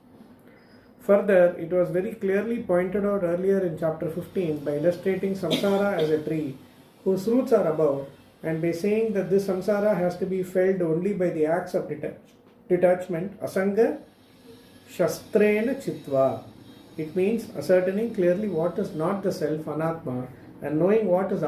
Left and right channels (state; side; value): identical; both; correlation 1.00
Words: Further, it was very clearly pointed out earlier in chapter 15 by illustrating samsara as a tree whose roots are above, and by saying that this samsara has to be felt only by the acts of detachment, asanga shastrena chitva. It means ascertaining clearly what is not the self, anatma, and knowing what is